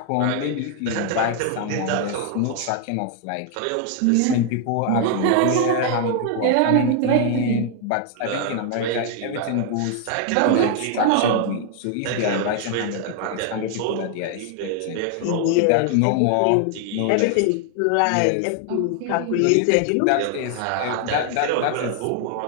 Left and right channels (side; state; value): both; different; correlation 0.00